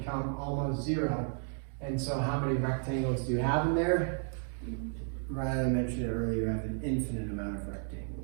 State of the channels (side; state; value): left; silent; 56 dB below the other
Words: almost 0. And so how many rectangles do you have in there? Rather than mention it earlier, you have an infinite amount of